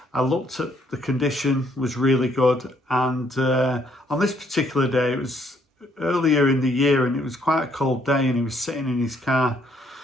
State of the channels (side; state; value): both; normal; correlation 0.69